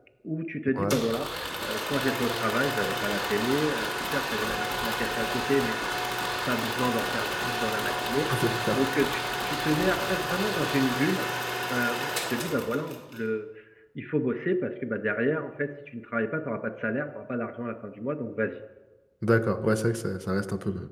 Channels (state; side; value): identical; both; correlation 1.00